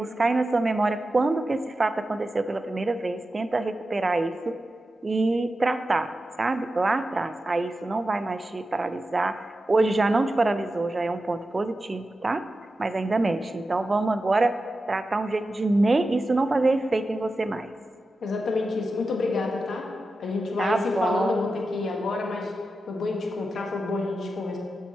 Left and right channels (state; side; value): normal; both; correlation 0.92